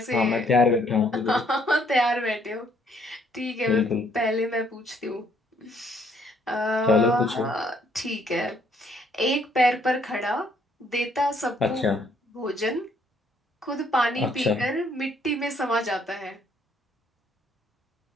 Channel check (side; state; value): both; normal; correlation 0.66